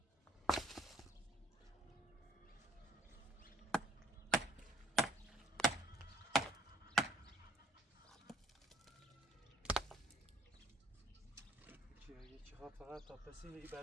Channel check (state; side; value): normal; both; correlation 0.59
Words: فقط تا پسین ای